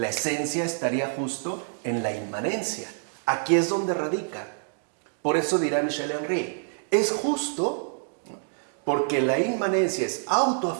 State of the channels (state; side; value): silent; left; digital silence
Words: esencia estaría justo en la inmanencia. Aquí es donde radica. Por eso dirá Michel Henry, es justo porque la inmanencia es